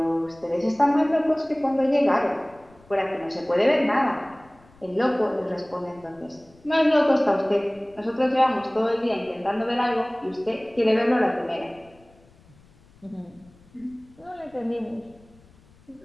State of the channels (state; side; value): noise; left; rumble, 28 dB below the sound